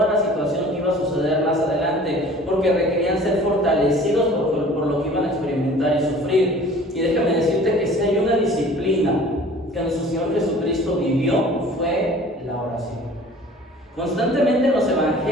la situación que iba a suceder más adelante, porque requerían ser fortalecidos por lo que iban a experimentar y sufrir. Y déjame decirte que si hay una disciplina que nuestro Señor Jesucristo vivió, fue la oración. Constantemente en los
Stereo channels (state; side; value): normal; both; correlation 0.47